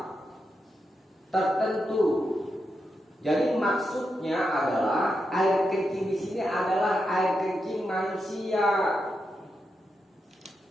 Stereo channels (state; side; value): normal; both; correlation 0.86